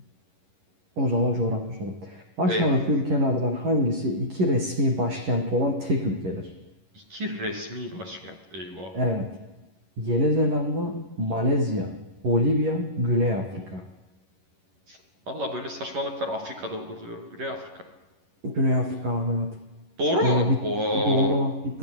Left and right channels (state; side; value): late; left; 11 ms